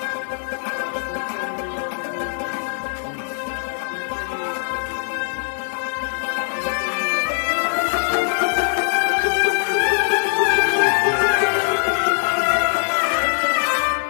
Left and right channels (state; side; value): silent; right; 65 dB below the other